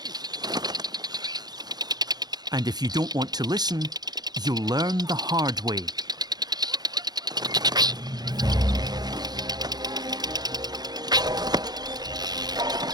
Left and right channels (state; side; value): late; left; 0.19 ms